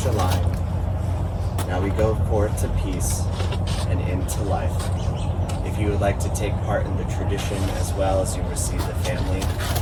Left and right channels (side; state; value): both; identical; correlation 1.00